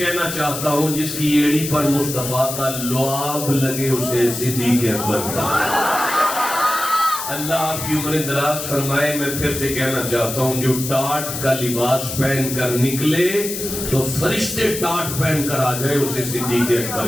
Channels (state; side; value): noise; left; hiss, 6 dB below the sound